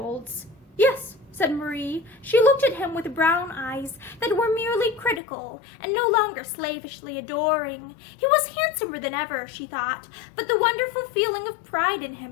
"Yes," said Marie. She looked at him with brown eyes that were merely critical and no longer slavishly adoring. He was handsomer than ever, she thought, but the wonderful feeling of pride in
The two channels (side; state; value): right; drops out; at 5.2 s